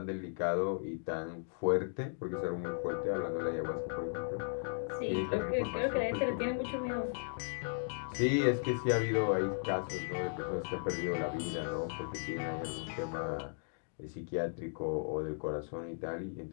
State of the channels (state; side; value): silent; right; digital silence